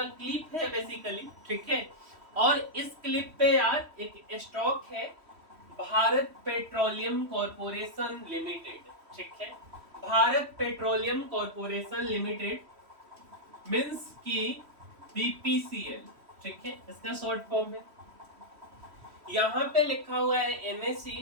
क्लिप है बेसिकली, ठीक है। और इस क्लिप पे यार एक स्टॉक है भारत पेट्रोलियम कॉरपोरेशन लिमिटेड, ठीक है। Bharat petroleum corporation limited means की बीपीसीएल, ठीक है, इसका शॉर्ट फॉर्म है। यहाँ पे लिखा हुआ है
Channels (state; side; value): late; left; 3.1 ms